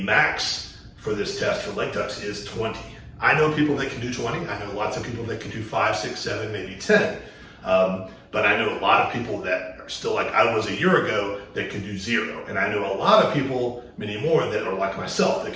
max for this test for leg tucks is 20. I know people that can do 20. I know lots of people that can do 5, 6, 7, maybe 10. But I know a lot of people that are still like I was a year ago that can do 0. And I know a lot of people, many more, that are like myself that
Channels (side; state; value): both; identical; correlation 1.00